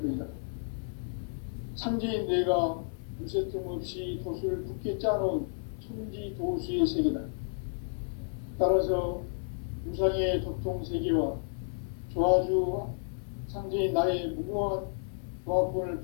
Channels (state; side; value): silent; right; 57 dB below the other